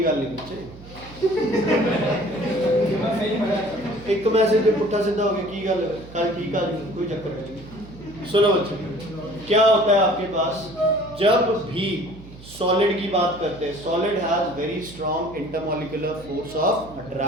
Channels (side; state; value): right; noise; hum, 18 dB below the sound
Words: गल नहीं बच्चे, एक मैसेज पे पुट्ठा सीधा हो गया, की गल कल ठीक आ गई, कोई चक्कर नहीं। सुनो बच्चे, क्या होता है आपके पास, जब भी सॉलिड की बात करते हैं, solid has very strong intermolecular force of